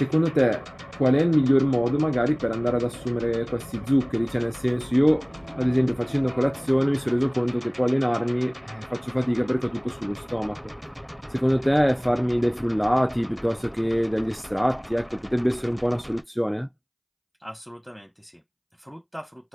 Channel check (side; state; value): both; identical; correlation 1.00